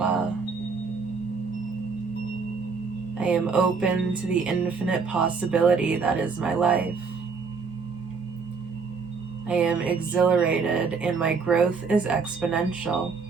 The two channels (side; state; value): left; quieter; 5.0 dB